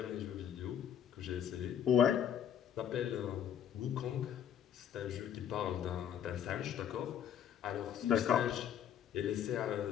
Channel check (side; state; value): right; quieter; 9.3 dB